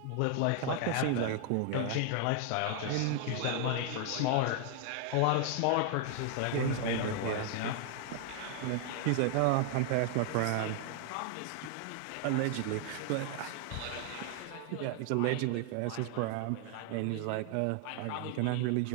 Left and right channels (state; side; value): different; both; correlation 0.00